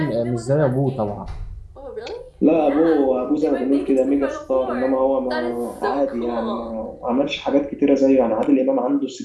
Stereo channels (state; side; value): identical; both; correlation 1.00